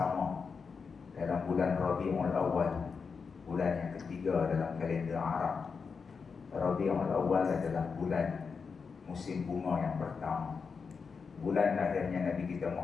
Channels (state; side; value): quieter; right; 5.4 dB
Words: dalam bulan Rabiul Awal, bulan yang ketiga dalam kalender Arab. Rabiul Awal adalah bulan musim bunga yang pertama, bulan lahirnya Nabi kita